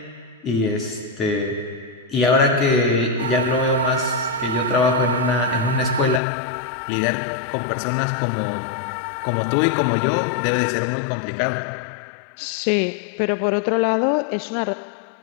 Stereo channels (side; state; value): right; drops out; at 6.2 s